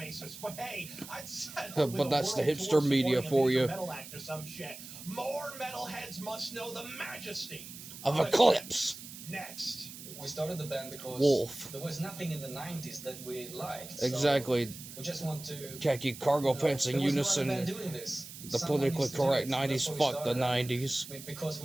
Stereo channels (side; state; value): right; noise; hiss, 13 dB below the sound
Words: But hey, I'd settle with But a that's the world hipster tour media supporting a for major you. metal act or some shit. More metalheads must know the majesty Of Eclipse. Next. We started the band because Wolf. there was nothing in the 90s that we liked. So Exactly. we just want to... Khaki cargo pants in there was no other unison. band doing this. The Someone politically needs to do correct it. So 90s. that's why we Fuck the started. 90s. Because